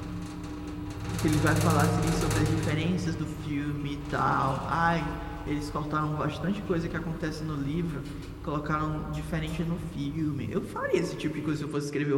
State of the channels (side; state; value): both; identical; correlation 1.00